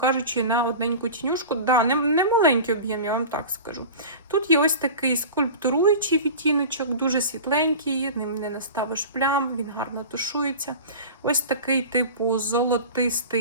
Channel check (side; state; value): both; inverted; correlation -0.34